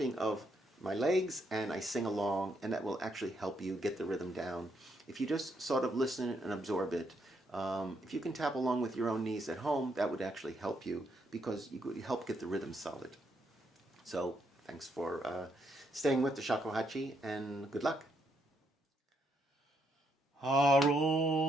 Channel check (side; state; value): both; normal; correlation 0.75